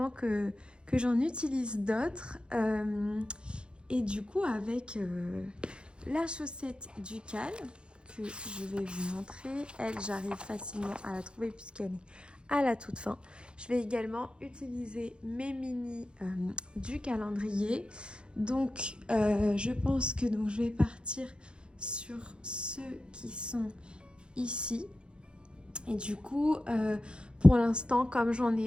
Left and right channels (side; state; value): left; late; 0.054 ms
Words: que j'en utilise d'autres. Et du coup, avec la chaussette Ducal, que je vais vous montrer, elle, j'arrive facilement à la trouver puisqu'elle est à la toute fin. Je vais également utiliser mes mini du calendrier. Donc, je pense que je vais partir sur ceux qui sont ici. Et du coup, pour l'instant, comme j'en